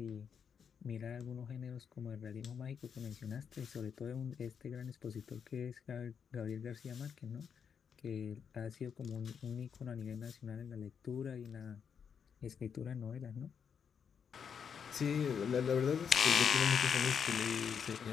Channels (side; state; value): right; quieter; 7.0 dB